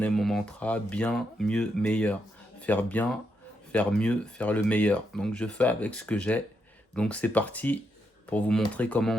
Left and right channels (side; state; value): both; normal; correlation 0.81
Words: mon mantra, bien, mieux, meilleur. Faire bien, faire mieux, faire le meilleur. Donc je fais avec ce que j'ai. Donc c'est parti pour vous montrer comment